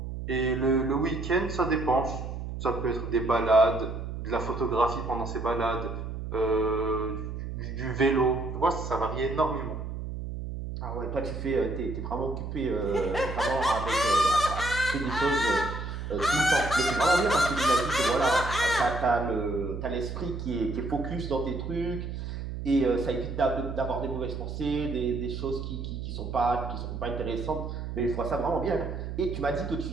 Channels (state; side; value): noise; right; hum, 6 dB below the sound